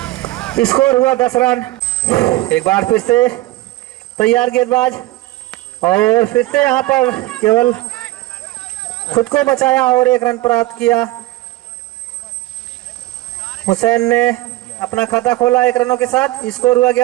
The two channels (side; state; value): left; quieter; 17.7 dB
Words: स्कोर हुआ 10 रन। एक बार फिर से तैयार गेंदबाज, और फिर से यहाँ पर केवल खुद को बचाया, और 1 रन प्राप्त किया। हुसैन ने अपना खाता खोला 1 रनों के साथ। स्कोर हुआ